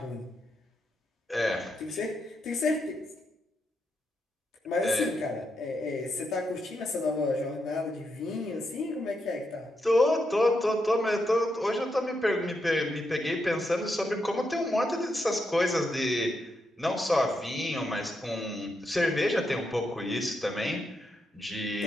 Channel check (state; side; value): normal; both; correlation 0.83